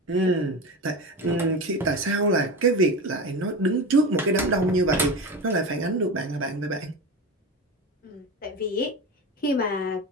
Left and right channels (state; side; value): normal; both; correlation 0.25